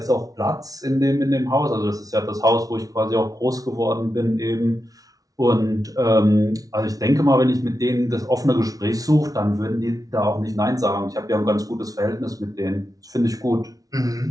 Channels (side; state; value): left; late; 0.18 ms